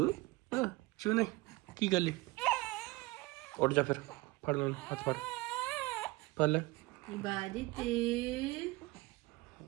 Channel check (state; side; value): quieter; left; 21.4 dB